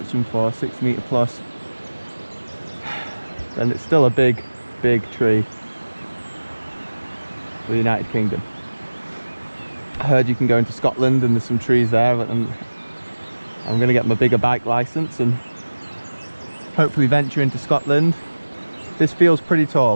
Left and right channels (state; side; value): inverted; both; correlation -1.00